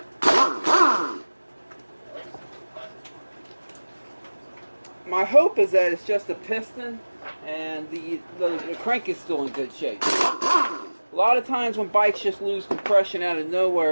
My hope is that it's just a piston and the crank is still in good shape. A lot of times when bikes just lose compression out of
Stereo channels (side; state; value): both; inverted; correlation -1.00